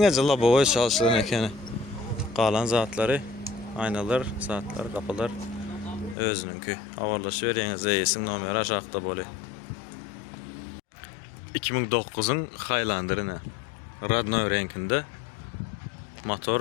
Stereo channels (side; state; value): right; drops out; at 6.2 s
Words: lavaboya çalışılan ekeni. Kalan zatları, aynalar, saatler, kapılar özününki. Avarlaşıveriniz. Eyesin numara aşağıda böyle. 2009'un Highlander'ı Radno renkinde.